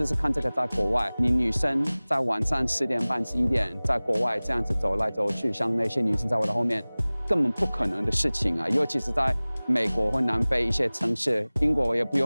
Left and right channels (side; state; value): both; inverted; correlation -1.00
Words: 试看这个在国外，你女生在晚上10点半、11点在国外这样子走来走去，像那些女生在我的后面，根本不可能的事情啊！尤其是在美国或南非一些城市，英国也不